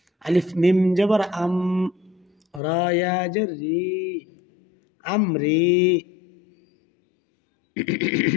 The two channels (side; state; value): right; drops out; at 2.6 s